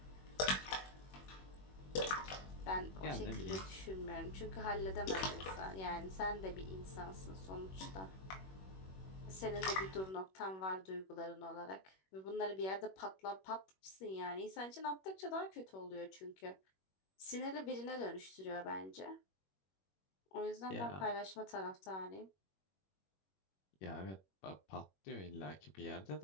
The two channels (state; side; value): late; right; 21 ms